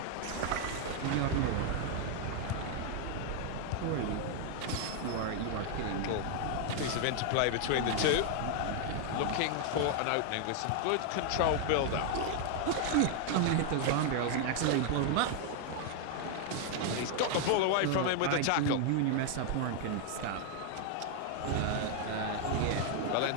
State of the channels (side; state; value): both; different; correlation 0.00